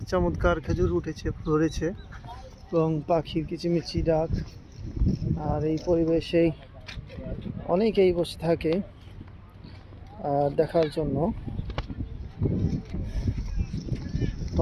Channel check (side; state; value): both; identical; correlation 1.00